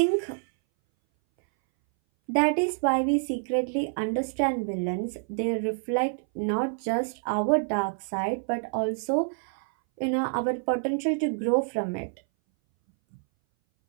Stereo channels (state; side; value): silent; left; 59 dB below the other